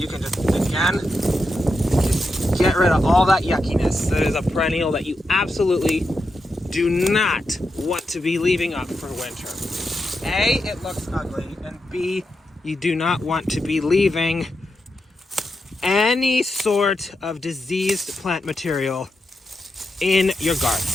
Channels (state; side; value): normal; both; correlation 0.86